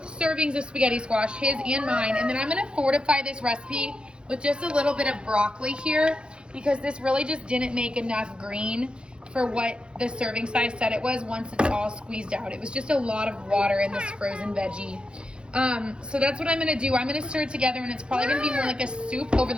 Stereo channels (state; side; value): late; left; 0.054 ms